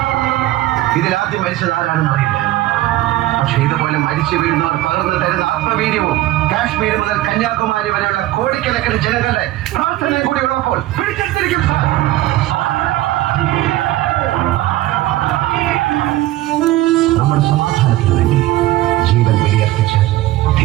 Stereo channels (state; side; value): quieter; left; 15.9 dB